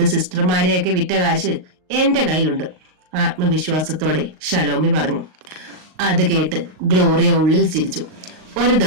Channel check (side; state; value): left; late; 38 ms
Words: സിസ്റ്റർമാരെയൊക്കെ വിറ്റ കാശ് എന്റെ കയ്യിലുണ്ട്, ആത്മവിശ്വാസത്തോടെ ഷലോമി പറഞ്ഞു. അത് കേട്ട് ഗ്ലോറിയ ഉള്ളിൽ ചിരിച്ചു. ഒരു